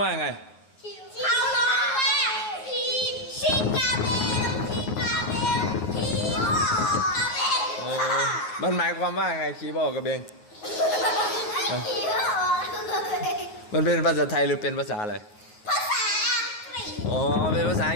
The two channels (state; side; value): late; right; 9.5 ms